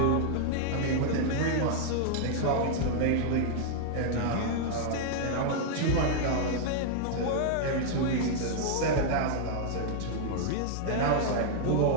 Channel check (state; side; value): different; both; correlation -0.01